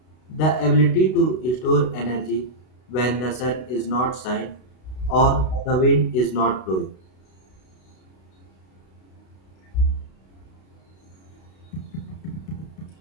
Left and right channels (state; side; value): late; right; 32 ms